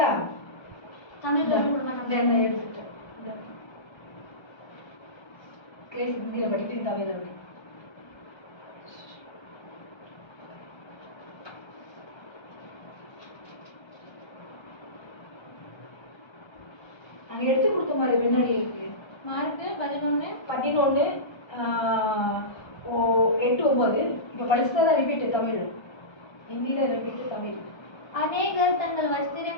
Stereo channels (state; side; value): late; right; 1.3 ms